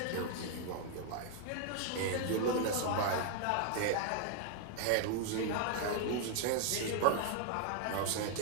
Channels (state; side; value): different; both; correlation 0.00